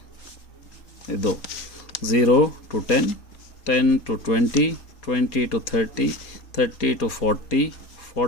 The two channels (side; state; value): right; late; 4.2 ms